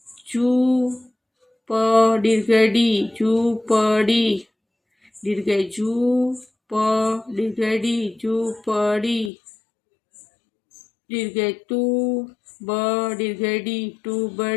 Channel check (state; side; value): drops out; right; at 9.3 s